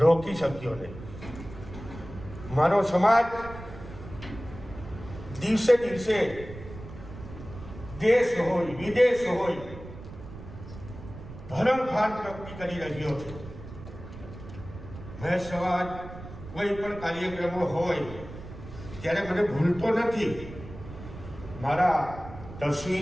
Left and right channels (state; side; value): noise; right; rumble, 13 dB below the sound